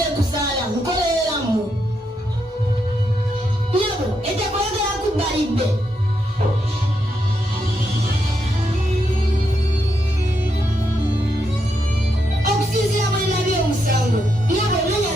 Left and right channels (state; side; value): normal; both; correlation 0.81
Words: kuzaala nkoleramu. Nyabo, etekwagala kubalibbe. Okusinziira bwe nabye omusango, nyabo nenya